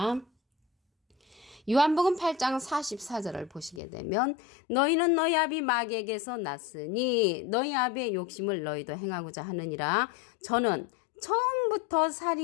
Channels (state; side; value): drops out; right; at 3.8 s